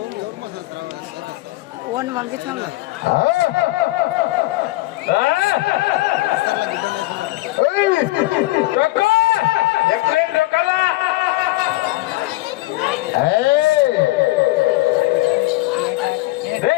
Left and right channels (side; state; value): right; quieter; 19.2 dB